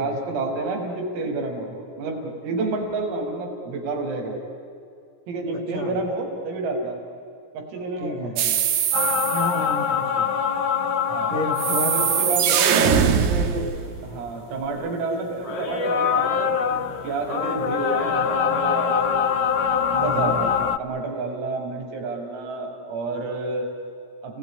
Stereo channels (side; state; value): left; late; 17 ms